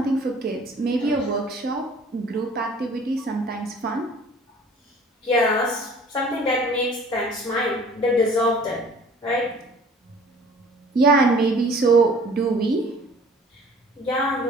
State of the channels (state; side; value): normal; both; correlation 0.51